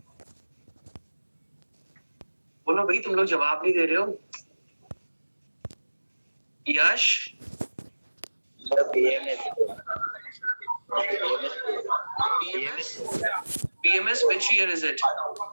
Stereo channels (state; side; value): inverted; both; correlation -1.00